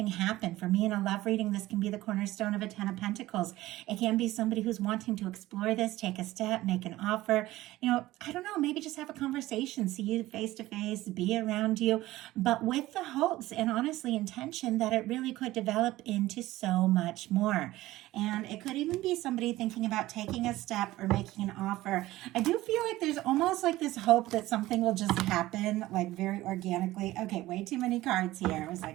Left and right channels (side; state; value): left; quieter; 16.8 dB